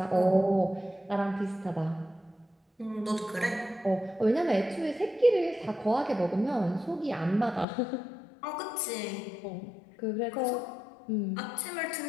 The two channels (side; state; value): right; drops out; at 7.7 s